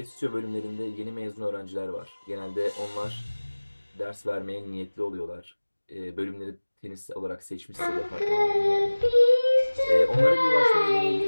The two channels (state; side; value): inverted; both; correlation -1.00